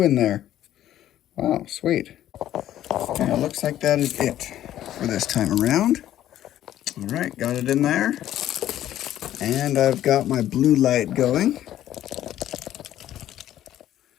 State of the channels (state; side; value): quieter; right; 12.4 dB